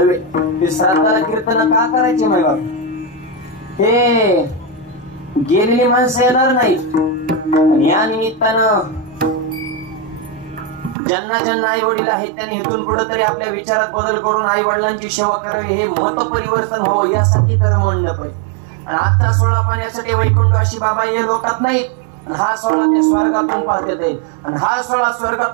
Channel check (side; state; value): left; drops out; at 11.0 s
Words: ते श्राद्धाला कीर्तन का करायचे माय बाप? हे गेलेली माणसं येणार नाहीत. या निमित्तानं ज्यांना ज्यांना आई वडील आहेत त्यांनी इथून पुढे तरी आपल्या विचारात बदल करून आई वडिलांची सेवा करावी, हे मत परिवर्तन हो यासाठी तर मंडप आहे. आणि आता सोळा पाण्यासाठी वैकुंठवासी बाबा हे लोकात नाहीत. हा सोहळा ते स्वर्गातून पाहत येईल. आणि हा सोहळा